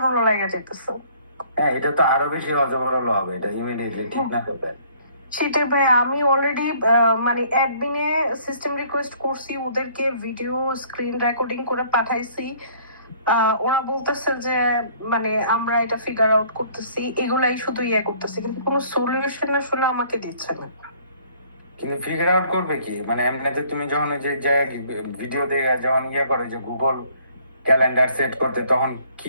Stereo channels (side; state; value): both; inverted; correlation -0.59